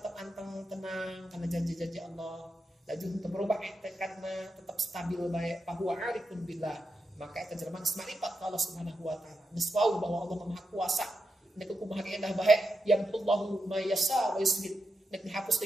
anteng tenang kana janji-janji Allah. Laju untuk berubah tekadna tetap stabil bae bahwa arifun billah. Maka eta jelema geus marifat ka Allah Subhanahu wa taala. Geus wau bahwa Allah Maha Kuasa. Nek kumaha ge endah bae yamullahu ma yasha wa yusbit. Nek dihapus ti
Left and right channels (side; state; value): both; normal; correlation 0.87